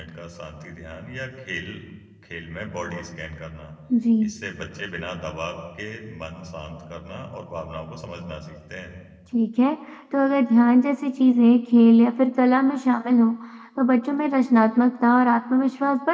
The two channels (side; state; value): both; identical; correlation 1.00